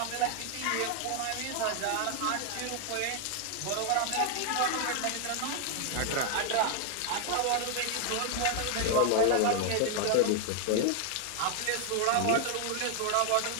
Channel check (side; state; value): both; different; correlation 0.00